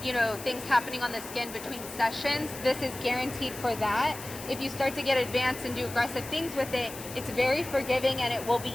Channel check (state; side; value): noise; left; hiss, 12 dB below the sound